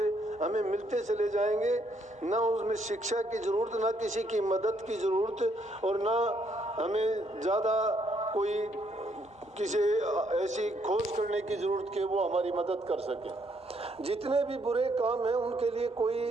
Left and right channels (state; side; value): normal; both; correlation 0.71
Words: हमें मिलते चले जाएंगे। ना उसमें शिक्षा की जरूरत, ना किसी की मदद की जरूरत, और ना हमें ज़्यादा कोई किसी ऐसी खोज करने की जरूरत कि वो हमारी मदद कर सके। जितने भी बुरे काम हैं उनके लिए